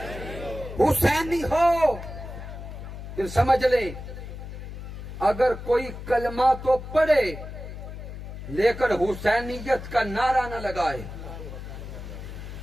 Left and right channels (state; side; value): noise; left; hum, 10 dB below the sound